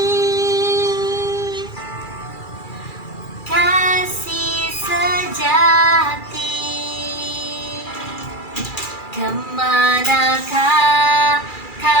kasih sejati? Kemanakah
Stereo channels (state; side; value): late; right; 2.3 ms